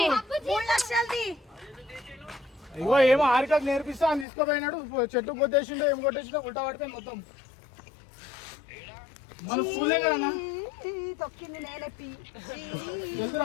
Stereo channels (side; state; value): right; drops out; at 4.2 s